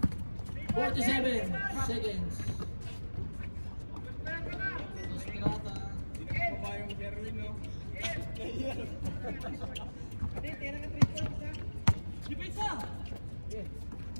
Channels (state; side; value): inverted; both; correlation -1.00